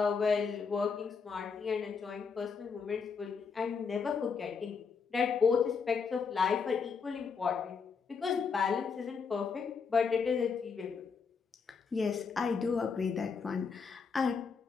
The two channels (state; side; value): quieter; right; 5.6 dB